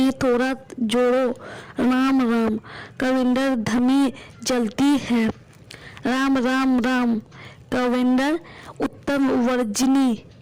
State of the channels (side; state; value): both; identical; correlation 1.00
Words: थोड़ा जोड़ो, राम राम। कैलेंडर धमी जलती है, राम राम राम। कैलेंडर उत्तम